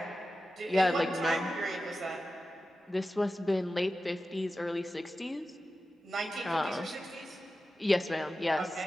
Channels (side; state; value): both; normal; correlation 0.93